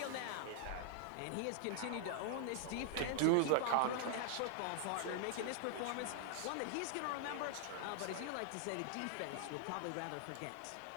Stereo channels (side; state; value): both; different; correlation -0.01